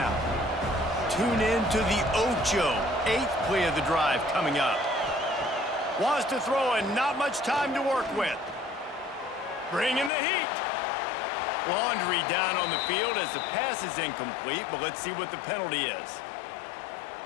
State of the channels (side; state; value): right; drops out; at 10.1 s